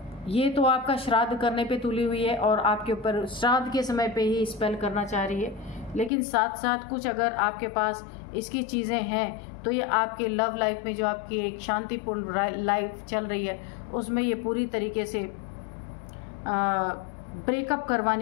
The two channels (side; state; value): right; drops out; at 6.1 s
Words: ये तो आपका श्राद्ध करने पे तुली हुई है और आपके ऊपर श्राद्ध के समय पे ही स्पेल करना चाह रही है, लेकिन साथ साथ कुछ अगर आपके पास इसकी चीज़ें हैं तो ये आपके लव लाइफ में जो आपकी एक शांतिपूर्ण लाइफ चल रही है उसमें ये पूरी तरीके से ब्रेकअप